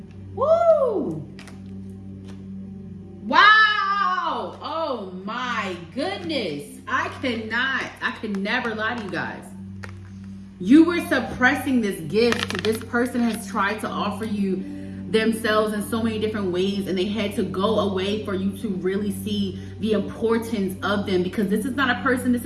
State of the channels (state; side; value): identical; both; correlation 1.00